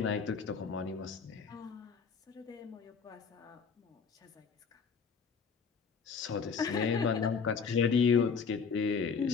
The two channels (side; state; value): right; quieter; 5.7 dB